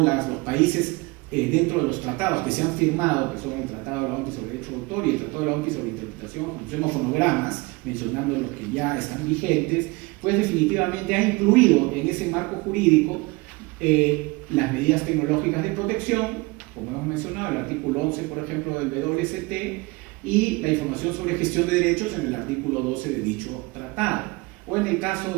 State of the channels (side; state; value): left; quieter; 24.7 dB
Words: los países dentro de los tratados que se han firmado, que son el Tratado de la OMPI sobre Derecho de Autor y el Tratado de la OMPI sobre Interpretación, Ejecución o Fonogramas, mencionando los que ya están vigentes, pues definitivamente ha incluido en ese marco jurídico las medidas tecnológicas de protección, como hemos mencionado, el artículo 11, por ejemplo, del WST, y la información sobre gestión de derechos en el artículo 12 de dicho tratado. O en el